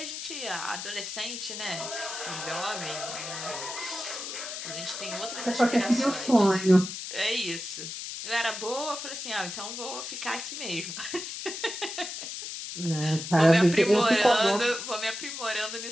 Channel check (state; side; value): noise; left; hiss, 7 dB below the sound